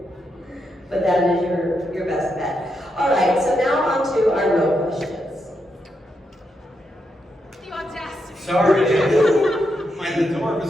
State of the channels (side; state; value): both; normal; correlation 0.83